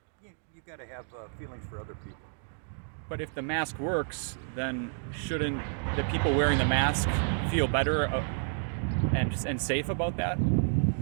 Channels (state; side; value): silent; left; digital silence